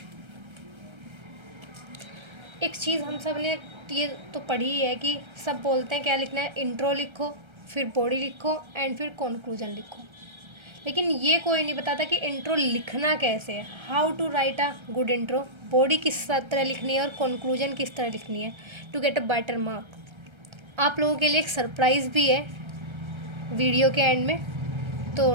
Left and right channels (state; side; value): late; left; 1.3 ms